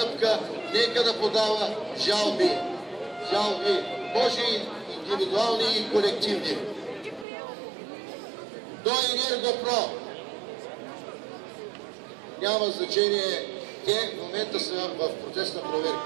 нека да подава жалби. Жалби, може и индивидуални и колективни. До Енергопро няма значение, те в момента са в процес на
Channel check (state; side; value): drops out; left; at 7.2 s